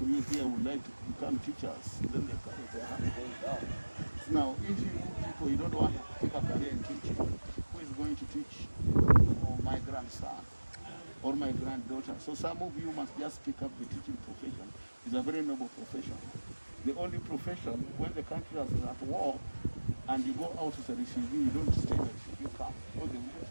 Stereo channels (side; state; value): both; inverted; correlation -1.00